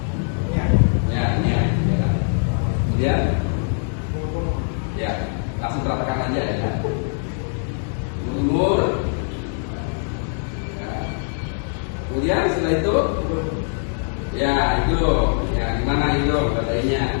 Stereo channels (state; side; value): silent; right; 64 dB below the other